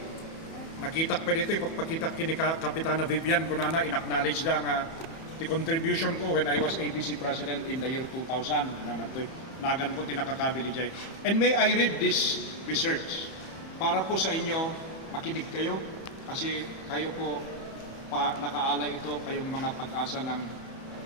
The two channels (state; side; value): late; right; 31 ms